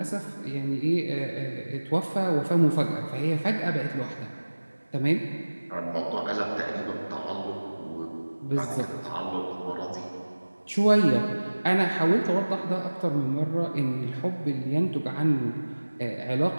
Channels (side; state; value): both; inverted; correlation -1.00